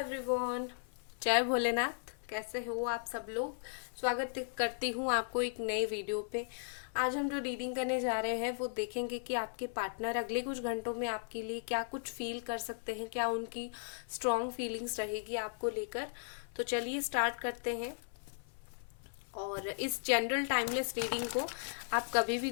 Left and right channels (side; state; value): right; silent; 53 dB below the other